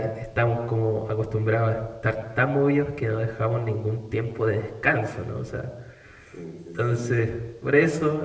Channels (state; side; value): identical; both; correlation 1.00